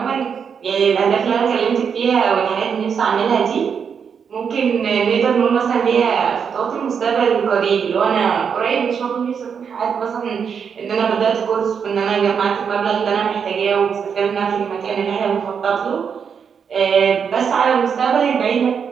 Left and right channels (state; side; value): quieter; left; 6.8 dB